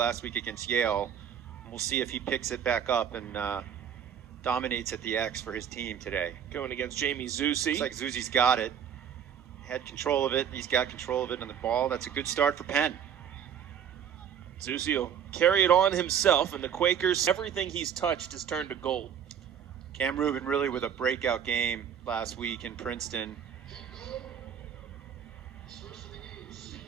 week against Yale. We'll see if he picks it back up and dominates at the X for his team today. Going against Jamie Zusi. Looks like Zusi's got it. Had control of it. He's got control of it on the ball. That's a good start for Penn. Zusi will carry it on himself, and the Quakers, everything he's touched has turned to gold. Cam Rubin really with a breakout game last week in Princeton.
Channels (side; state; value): left; quieter; 8.4 dB